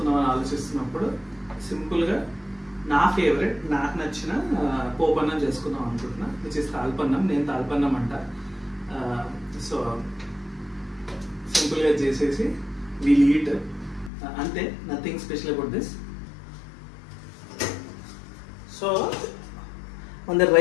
ఆలోచిస్తున్నప్పుడు సింపుల్గా నా ఫేవరెట్ నాకు నచ్చిన పోపన్నం చేసుకుందాం అనుకుంటున్నా, విచ్ ఇస్ తాల్పన్నం. నేను తాల్పన్నం అంట. సో సింపుల్గా చేసేసి వీల్ ఈట్ అంతే, nothing special about this. So మన దగ్గర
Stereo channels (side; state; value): right; drops out; at 14.1 s